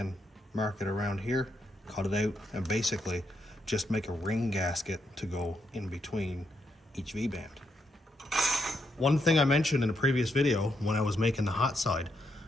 mark it around here, cut it out, and basically just make a ring gasket to go in between each V-band. One thing I mentioned in a previous video when I was making the hot side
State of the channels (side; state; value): both; normal; correlation 0.80